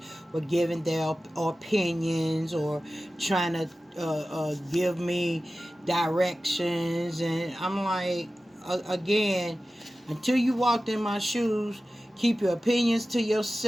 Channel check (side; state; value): both; normal; correlation 0.95